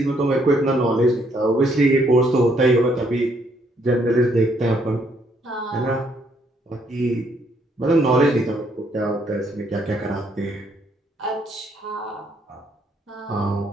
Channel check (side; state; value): both; normal; correlation 0.70